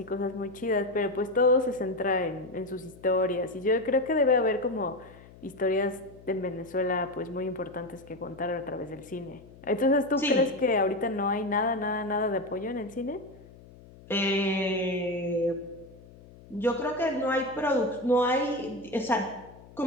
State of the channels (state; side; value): noise; left; hum, 21 dB below the sound